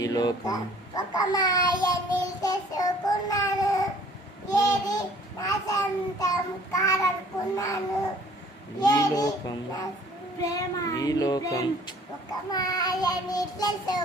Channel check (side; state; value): both; normal; correlation 0.55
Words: లోకం ఒక మాయని తెలుసుకున్నాను, ఏది నా సొంతం కాదనుకున్నాను, ఈ లోకం ప్రేమ ఈ లోకం ఒక మాయని